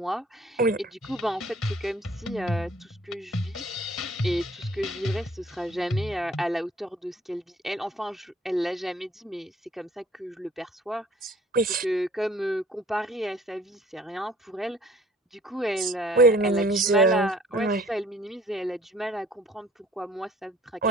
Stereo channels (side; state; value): both; normal; correlation 0.55